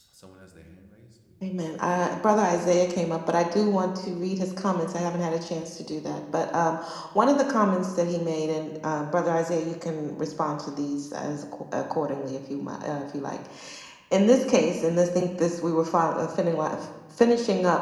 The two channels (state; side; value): identical; both; correlation 1.00